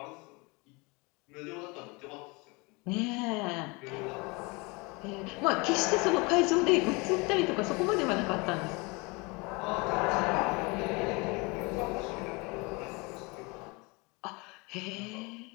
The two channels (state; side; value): quieter; right; 27.4 dB